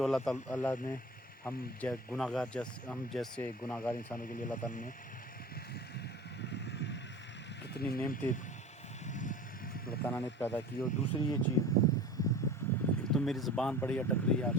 اللہ نے ہم جیسے گناہ گار انسانوں کے لیے اللہ تعالیٰ نے کتنی نعمتیں اللہ تعالیٰ نے پیدا کی. اور دوسری یہ چیز, ایک تو میری زبان بڑی اٹک رہی ہے آج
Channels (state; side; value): normal; both; correlation 0.37